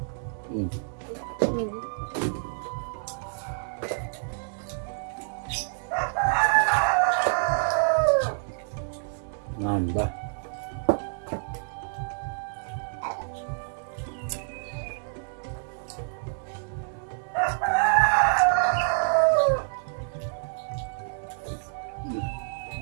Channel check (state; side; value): silent; left; digital silence